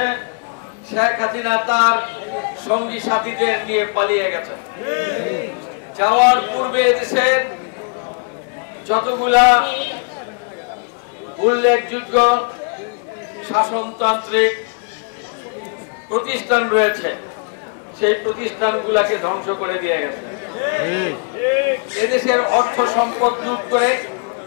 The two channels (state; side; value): quieter; right; 39.4 dB